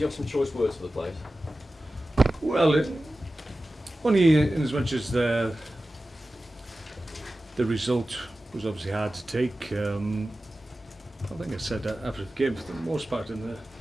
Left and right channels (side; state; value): both; normal; correlation 0.95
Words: have some choice words for the players? Well, only in as much as the result was obviously hard to take. I think I said that after the game, for the most part in